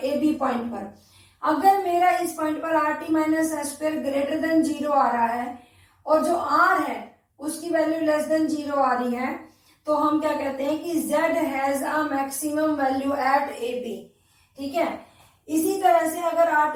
ए बी पॉइंट पर। अगर मेरा इस पॉइंट पर R T minus S square greater than 0 आ रहा है और जो आर है उसकी वैल्यू लेस देन 0 आ रही है, तो हम क्या कहते हैं कि z has a maximum value at a b. ठीक है, इसी तरह से अगर r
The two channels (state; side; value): identical; both; correlation 1.00